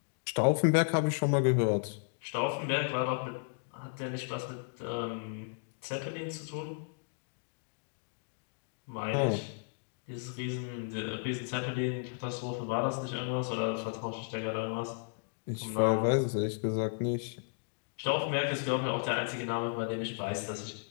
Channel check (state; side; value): silent; right; digital silence